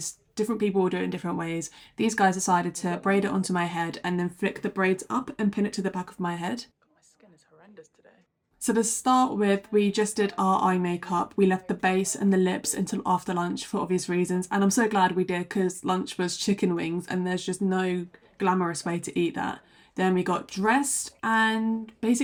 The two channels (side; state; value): both; identical; correlation 1.00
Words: Different people will do it in different ways. These guys decided to braid it onto my head and then flick the braids up and pin it to the back of my head. My skin is horrendous today. So to start with, we just did our eye makeup. We left the base and the lips until after lunch for obvious reasons. And I'm so glad we did because lunch was chicken wings and there's just no glamorous way to eat that. Then we got dressed and